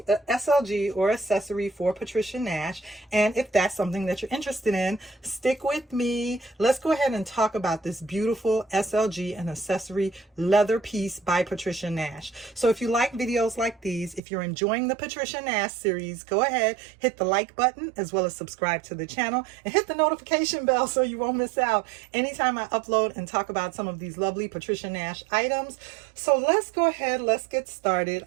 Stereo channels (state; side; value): drops out; left; at 14.2 s